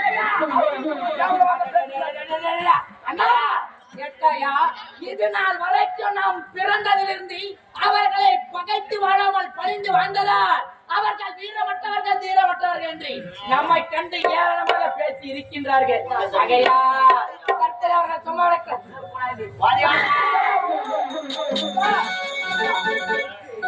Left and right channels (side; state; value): both; identical; correlation 1.00